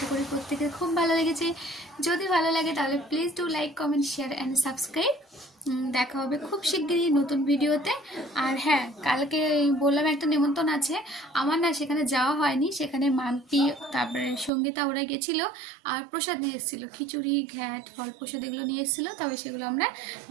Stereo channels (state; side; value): drops out; left; at 14.5 s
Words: করি প্রত্যেকের খুব ভালো লেগেছে। যদি ভালো লাগে তাহলে please do like, comment, share and subscribe. দেখা হবে খুব শিগগিরই নতুন ভিডিওতে। আর হ্যাঁ, কালকে বললাম একটা নিমন্ত্রণ আছে আমার, না সেখানে যাওয়া হয়নি। সেখানে মাম্পি, তারপরে সঙ্গীতা ওরা গেছিলো, আর প্রসাদ নিয়ে এসেছিলো, খিচুড়ি, ঘ্যাট, ফল প্রসাদ এগুলো নিয়ে এসেছিলো। তবে সেগুলো আমরা